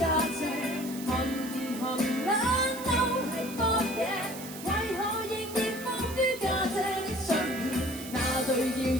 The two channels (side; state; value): right; noise; hiss, 13 dB below the sound